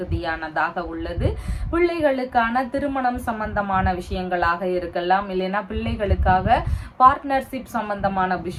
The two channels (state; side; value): identical; both; correlation 1.00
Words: உள்ளது. பிள்ளைகளுக்கான திருமணம் சம்பந்தமான விஷயங்களாக இருக்கலாம், இல்லைன்னா பிள்ளைகளுக்காக பார்ட்னர்ஷிப் சம்பந்தமான